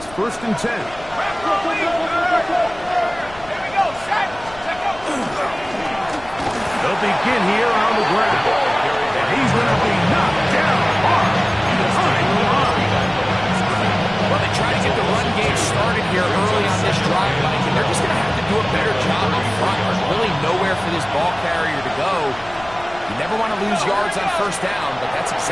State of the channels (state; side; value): noise; left; rumble, 20 dB below the sound